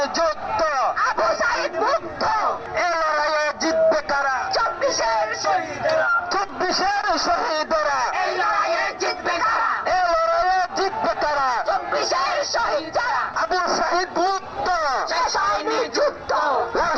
যুদ্ধ, আবু সাইদ মুক্ত। এ লড়াইয়ে জিতবে কারা? 24-এর শহীদরা, 24-এর শহীদরা, এই লড়াইয়ে জিতবে কারা? এ লড়াইয়ে জিতবে কারা? 24-এর শহীদ যারা, আবু সাইদ মুক্ত, শেষ হয়নি যুদ্ধ। লাল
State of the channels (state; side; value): identical; both; correlation 1.00